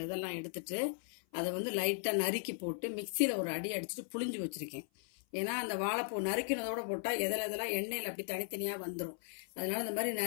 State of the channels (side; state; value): right; silent; 53 dB below the other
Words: இதெல்லாம் எடுத்துட்டு அதை வந்து லைட்டாக நறுக்கி போட்டு மிக்சியில் ஒரு அடி அடிச்சுட்டு புளிஞ்சு வச்சுருக்கேன். ஏன்னா அந்த வாழைப்பூ நறுக்கினதோட போட்டால் எதெல்லாம் எண்ணெயில் அப்படி தனித்தனியாக வந்துடும். அதனால இந்த மாதிரி